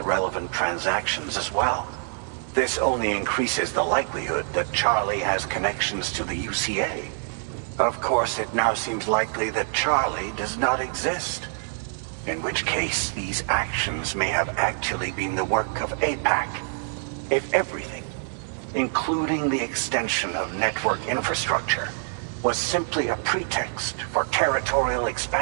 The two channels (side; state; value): left; silent; digital silence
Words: relevant transactions as well. This only increases the likelihood that Charlie has connections to the UCA. Of course, it now seems likely that Charlie does not exist. In which case, these actions may have actually been the work of APAC. If everything, including the extension of network infrastructure, was simply a pretext for territorial